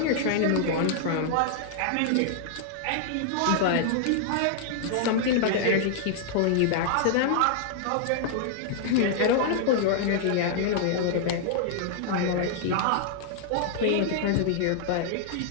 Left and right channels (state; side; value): different; both; correlation -0.01